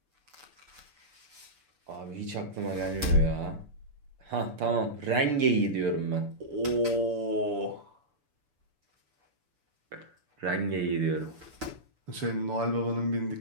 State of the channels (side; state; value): left; late; 6.9 ms